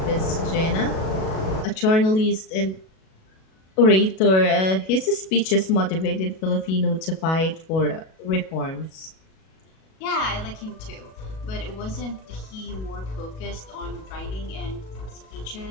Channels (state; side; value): late; right; 37 ms